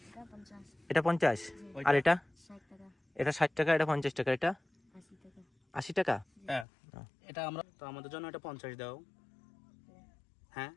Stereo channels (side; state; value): right; drops out; at 6.7 s